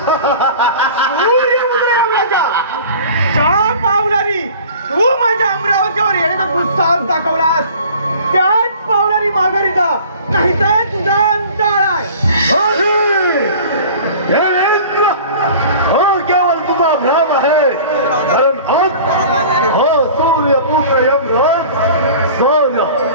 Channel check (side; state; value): both; inverted; correlation -0.43